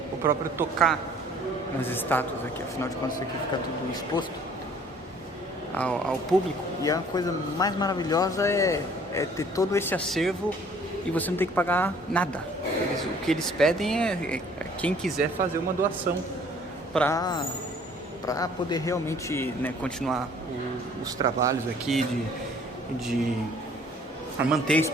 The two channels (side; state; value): both; normal; correlation 0.55